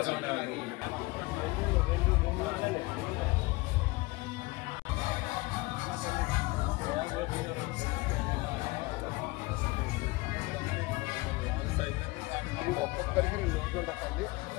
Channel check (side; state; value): right; quieter; 22.7 dB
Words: ఒక్కొక్కరికి 2 ఓట్లు ఉంటాయండి.